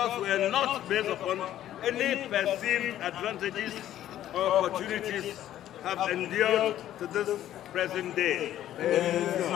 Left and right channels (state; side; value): quieter; right; 12.3 dB